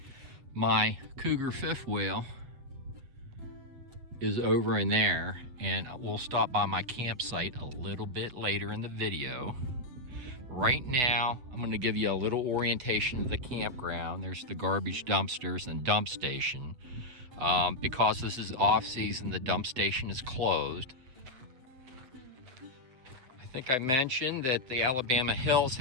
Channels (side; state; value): left; late; 7.9 ms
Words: My Cougar fifth wheel is over in there, and we'll stop by my campsite a little bit later in the video. Right now, I'm going to give you a little orientation of the campground. There's the garbage dumpsters and dump station. Because this is off-season, the dump station is closed. I think I mentioned that the Alabama Hills